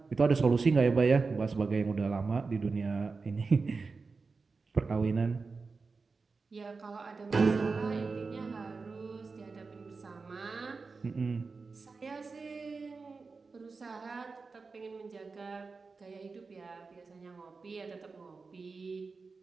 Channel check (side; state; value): left; quieter; 4.3 dB